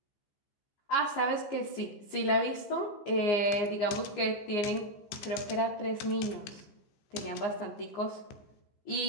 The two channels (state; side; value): late; right; 15 ms